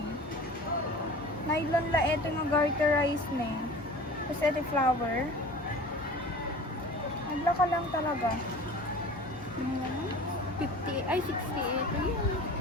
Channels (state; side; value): normal; both; correlation 0.40